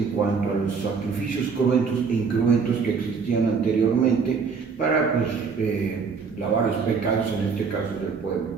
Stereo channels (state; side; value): quieter; left; 5.4 dB